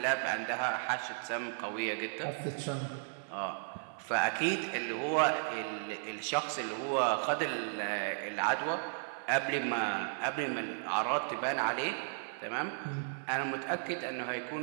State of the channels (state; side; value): silent; left; 55 dB below the other